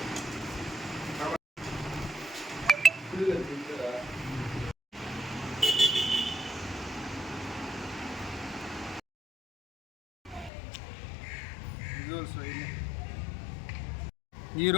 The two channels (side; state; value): right; drops out; at 10.5 s